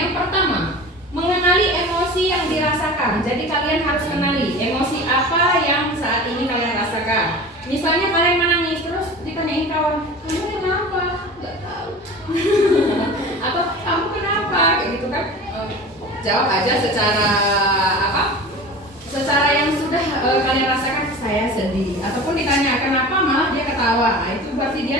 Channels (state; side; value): normal; both; correlation 0.36